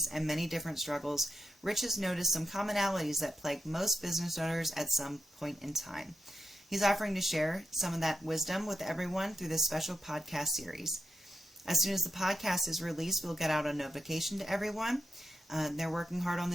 and many different struggles, Rich has noticed some commonalities that plague most business owners at some point in time. He's offering to share some of that wisdom with everyone through this special podcast series. As soon as the podcast is released, we'll get out a notification to everyone. They're working hard on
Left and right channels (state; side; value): normal; both; correlation 0.86